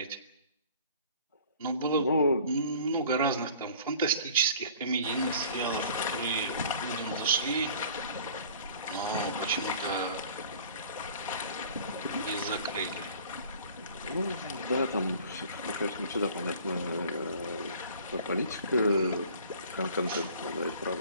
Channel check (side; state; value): both; inverted; correlation -0.47